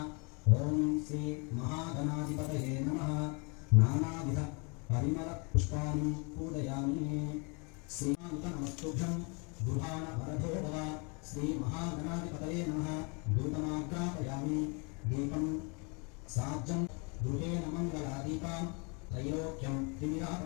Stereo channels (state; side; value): quieter; right; 33.2 dB